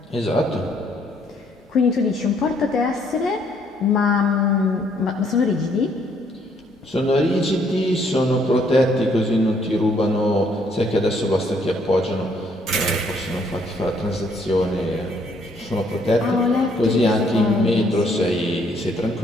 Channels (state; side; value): normal; both; correlation 0.67